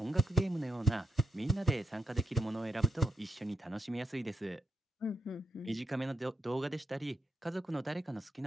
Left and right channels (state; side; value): normal; both; correlation 0.82